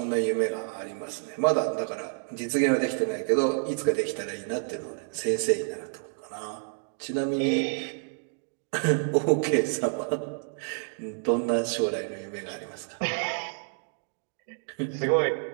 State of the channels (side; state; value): left; silent; digital silence